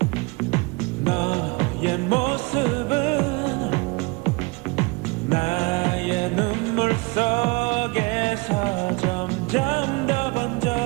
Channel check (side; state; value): left; quieter; 27.2 dB